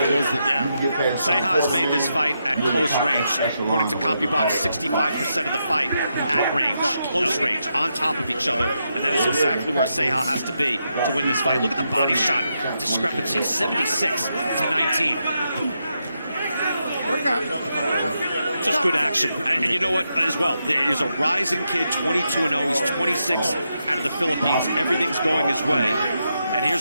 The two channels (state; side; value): inverted; both; correlation -0.83